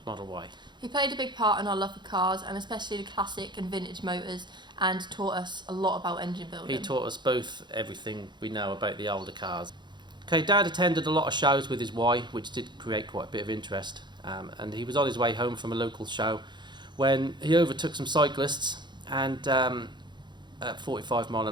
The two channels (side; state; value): left; late; 0.22 ms